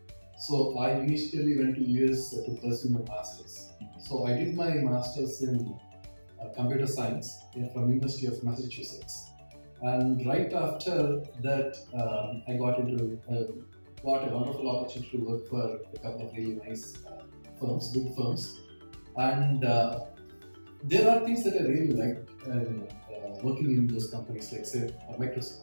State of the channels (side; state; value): both; inverted; correlation -1.00